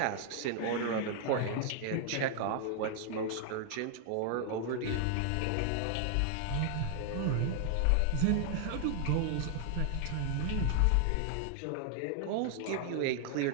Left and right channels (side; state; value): both; different; correlation 0.00